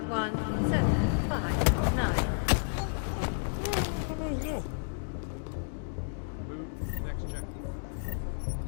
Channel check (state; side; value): silent; right; digital silence